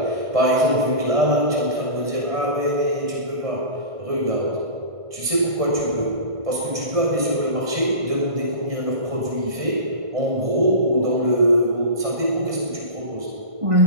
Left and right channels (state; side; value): late; left; 1.5 ms